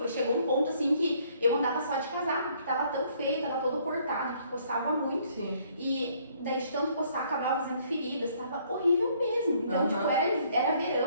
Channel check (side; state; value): both; inverted; correlation -0.64